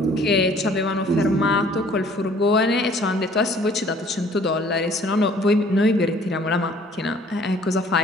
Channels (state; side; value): normal; both; correlation 0.56